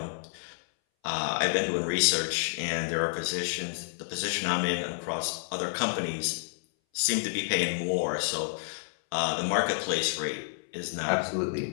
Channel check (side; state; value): right; silent; 58 dB below the other